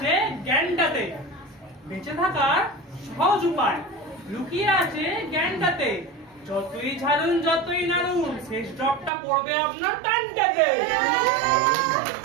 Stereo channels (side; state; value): left; drops out; at 9.1 s